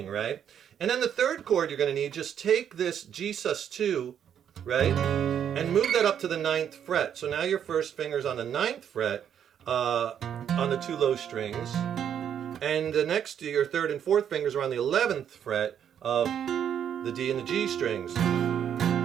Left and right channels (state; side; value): quieter; left; 8.9 dB